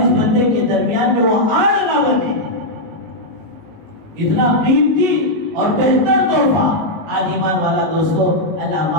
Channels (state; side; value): late; left; 19 ms